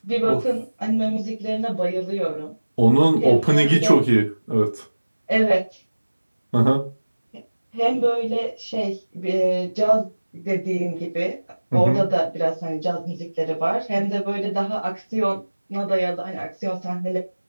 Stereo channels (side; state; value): both; inverted; correlation -1.00